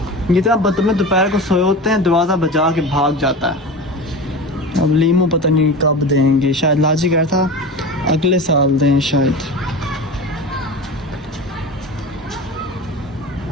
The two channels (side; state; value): both; normal; correlation 0.30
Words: ये तो बदतमीज दोपहर को सोए होते हैं, दरवाज़ा बजा के भाग जाता है। अब लीमू पता नहीं कब देंगे, शायद लाजी कह था अगले साल दें शायद।